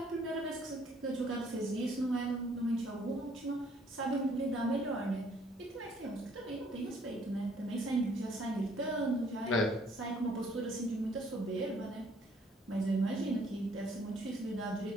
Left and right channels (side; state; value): both; normal; correlation 0.62